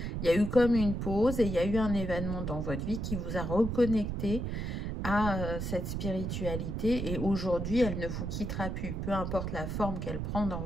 Il y a eu comme une pause et il y a eu un événement dans votre vie qui vous a reconnecté à cette spiritualité, et aujourd'hui, elle ne vous quittera plus. Peu importe la forme qu'elle prend dans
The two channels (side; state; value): right; noise; rumble, 3 dB below the sound